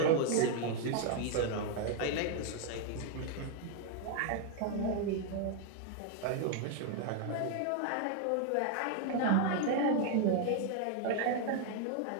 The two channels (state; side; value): different; both; correlation 0.00